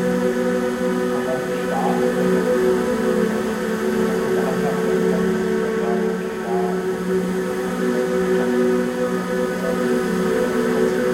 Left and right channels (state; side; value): identical; both; correlation 1.00